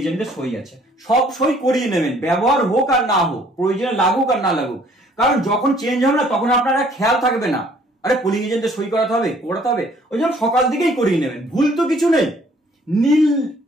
সই আছে, সব সই করিয়ে নেবেন, ব্যবহার হোক আর না হোক, প্রয়োজনে লাগুক আর না লাগুক। কারণ যখন চেঞ্জ হবে না তখন আপনারা খেয়াল থাকবে না, আরে পোলিং এজেন্টের সই করাতে হবে। ওই জন্য সকাল দিকেই করিয়ে নেবেন, ভুল তো কিছু নেই। নীল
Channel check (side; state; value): both; normal; correlation 0.59